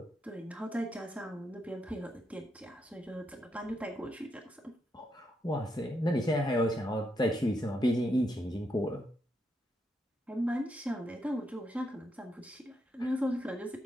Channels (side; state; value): both; normal; correlation 0.80